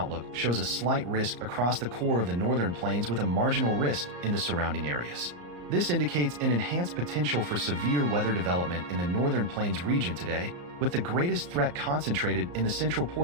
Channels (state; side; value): late; left; 34 ms